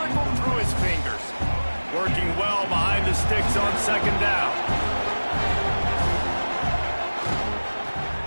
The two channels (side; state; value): both; inverted; correlation -1.00